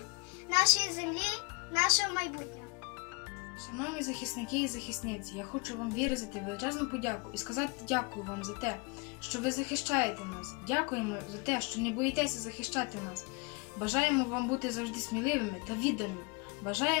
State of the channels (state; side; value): quieter; right; 31.4 dB